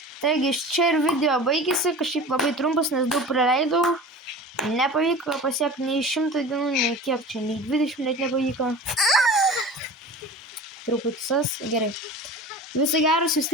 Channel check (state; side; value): normal; both; correlation 0.36